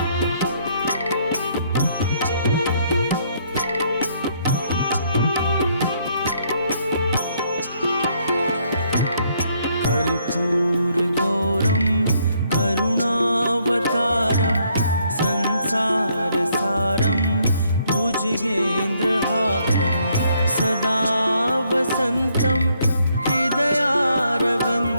कर्पूरगौरं करुणावतारं संसारसारं भुजगेन्द्रहारं सदा वसन्तं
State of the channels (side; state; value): both; inverted; correlation -0.70